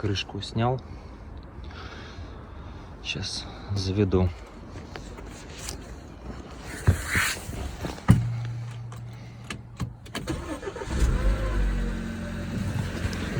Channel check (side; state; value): both; identical; correlation 1.00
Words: крышку снял. Сейчас заведу.